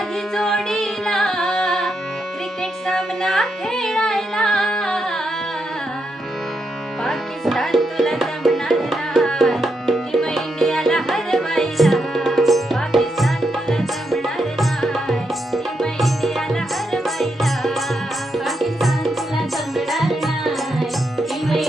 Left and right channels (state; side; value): normal; both; correlation 0.82